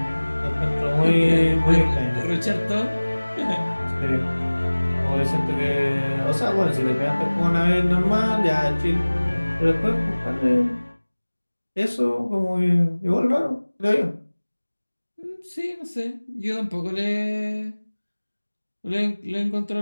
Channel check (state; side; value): inverted; both; correlation -1.00